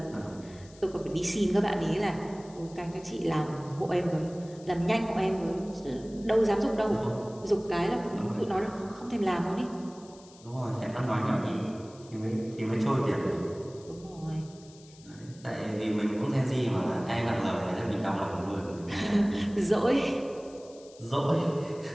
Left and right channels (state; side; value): noise; left; hiss, 24 dB below the sound